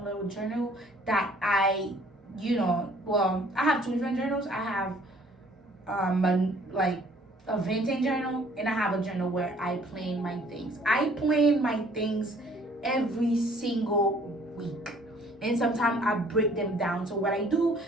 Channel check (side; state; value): both; normal; correlation 0.58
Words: little journal that I have 2 different journals. I have a vintage journal, and I have a journal where I plan my things. I plan my things every single week. And sometimes I break them down. So what I do